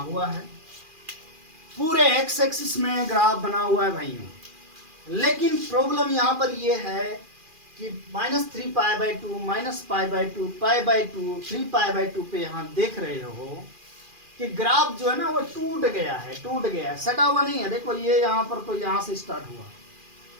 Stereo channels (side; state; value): left; late; 2.4 ms